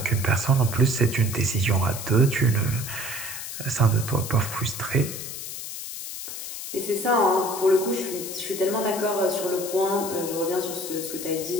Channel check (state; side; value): noise; left; hiss, 8 dB below the sound